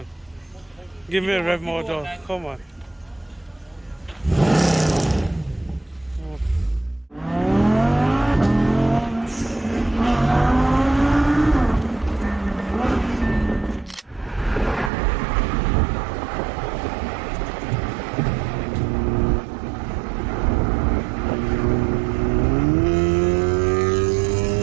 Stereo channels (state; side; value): drops out; left; at 14.9 s